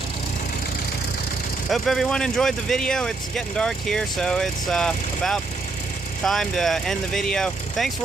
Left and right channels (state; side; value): quieter; left; 3.7 dB